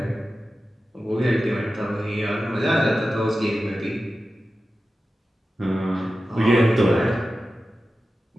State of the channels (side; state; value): both; normal; correlation 0.93